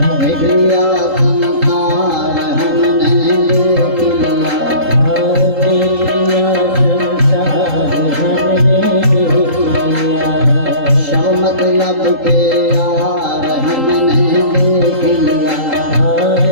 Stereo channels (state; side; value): late; left; 3.8 ms